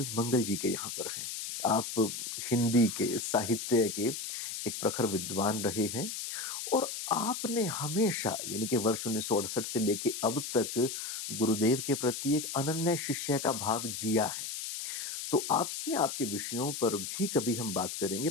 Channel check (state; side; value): noise; left; hiss, 5 dB below the sound